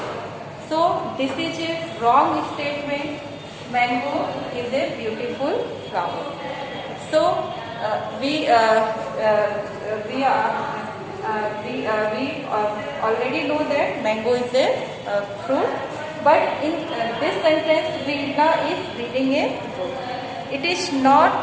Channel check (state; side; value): identical; both; correlation 1.00